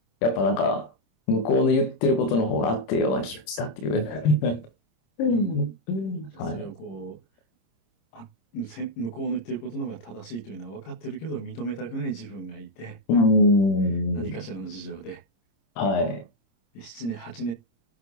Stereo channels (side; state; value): right; late; 26 ms